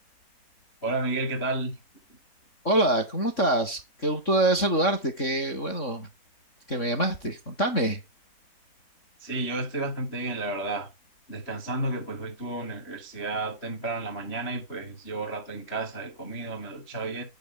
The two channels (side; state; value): right; late; 3.6 ms